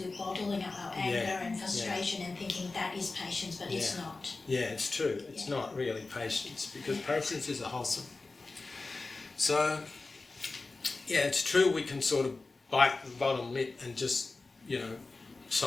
we're bottling up our anger and frustration and thinking that is patience, but it's not. Yeah, it's true. It's not really patience because patience is a wholesome. So, it's true we can sort of bite the bottom lip and just,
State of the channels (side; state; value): right; quieter; 3.6 dB